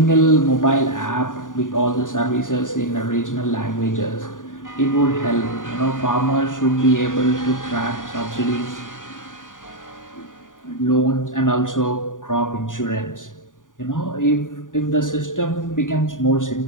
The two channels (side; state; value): right; late; 0.88 ms